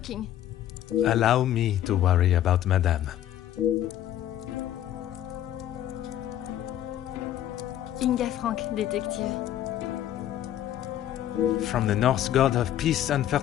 Allow me to worry about Madame. Inga Frank, detective. From the Norse god of peace and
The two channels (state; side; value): quieter; right; 11.8 dB